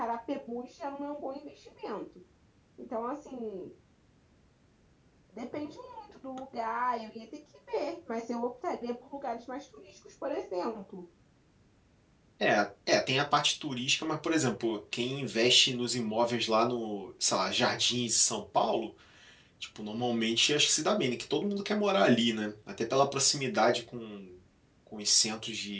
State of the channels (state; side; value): identical; both; correlation 1.00